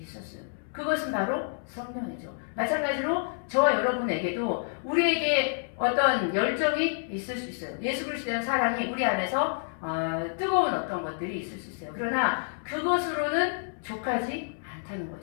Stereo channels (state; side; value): silent; right; 59 dB below the other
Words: 그것은 바로 성령이죠. 마찬가지로 저와 여러분에게도 우리에게 어떤 열정이 있을 수 있어요. 예수 그리스도에 대한 사랑이 우리 안에서 뜨거운 어떤 것들이 있을 수 있어요. 그러나 그것으로는 족하지 않다는